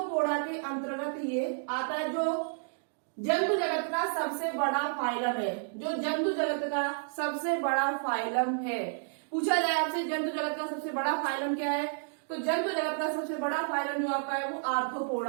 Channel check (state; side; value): silent; left; digital silence